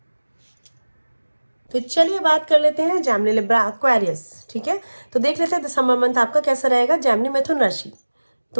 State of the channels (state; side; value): inverted; both; correlation -1.00